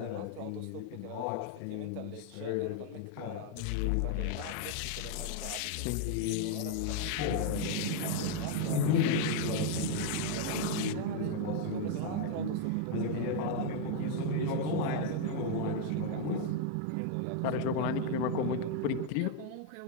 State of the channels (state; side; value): different; both; correlation 0.00